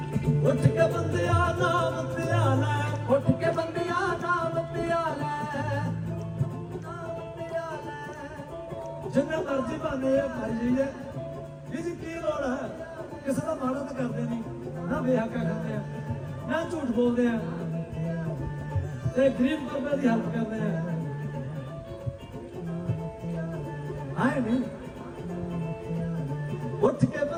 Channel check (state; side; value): identical; both; correlation 1.00